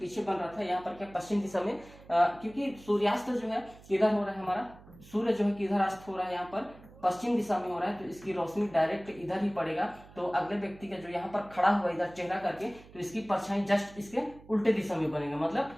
बन रहा था। यहाँ पर क्या पश्चिम दिशा में, क्योंकि सूर्यास्त जो है किधर हो रहा है हमारा, सूर्य जो है किधर अस्त हो रहा है, यहाँ पर पश्चिम दिशा में हो रहा है, तो इसकी रोशनी डायरेक्ट इधर ही पड़ेगा। तो अगले व्यक्ति का जो यहाँ पर खड़ा हुआ इधर चेहरा करके, तो इसकी परछाई जस्ट इसके उल्टे दिशा में बनेगा, मतलब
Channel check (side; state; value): right; noise; hum, 21 dB below the sound